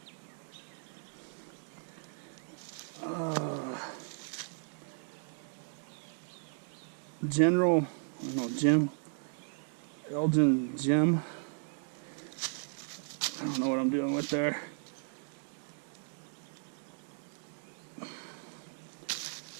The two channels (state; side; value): silent; left; 54 dB below the other